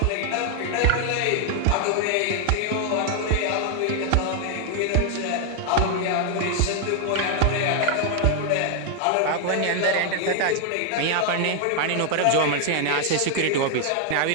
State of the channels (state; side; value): different; both; correlation 0.00